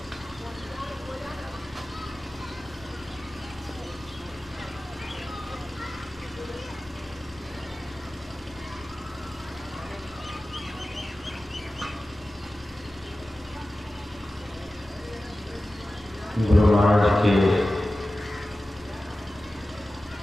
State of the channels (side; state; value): both; normal; correlation 0.95